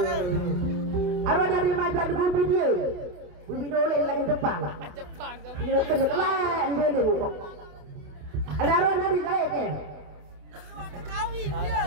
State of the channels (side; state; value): left; late; 28 ms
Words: Arwah dari mai gak di dia. Bibi dole lagi depan. Dia kena telan dole kok. Ada arwah dari kaya ke?